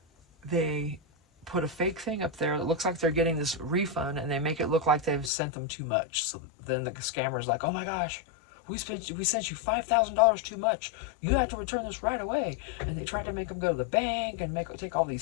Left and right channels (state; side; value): drops out; right; at 5.3 s